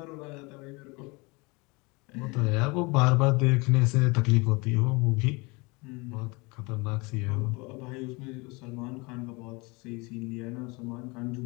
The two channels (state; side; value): quieter; right; 27.1 dB